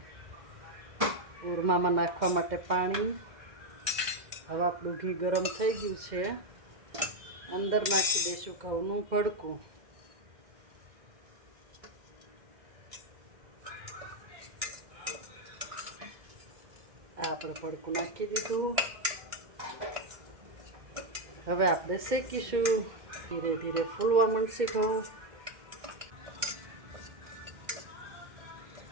ઓરમામાં નાખવા માટે પાણી. હવે આપણું ઘી ગરમ થઈ ગયું છે, અંદર નાખી દઈશું ઘઉંનું ભડકું. આ આપણે ભડકું નાખી દીધું. હવે આપણે શેકીશું. ધીરે ધીરે ફૂલવા માંડશે ઘઉં.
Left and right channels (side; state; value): left; late; 2.1 ms